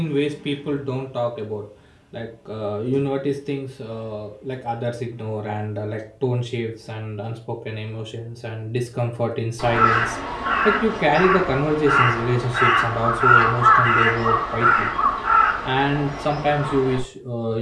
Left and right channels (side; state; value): both; identical; correlation 1.00